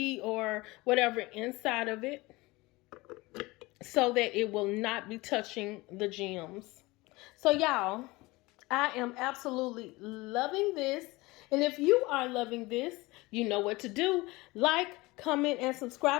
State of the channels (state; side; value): quieter; right; 22.0 dB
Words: or whatever inside of it so that it will not be touching the gems. So y'all, I am absolutely loving this. And if you are loving this, you know what to do. Like, comment, and